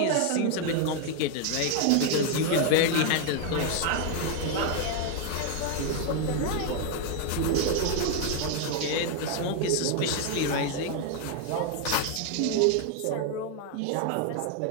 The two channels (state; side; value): different; both; correlation 0.01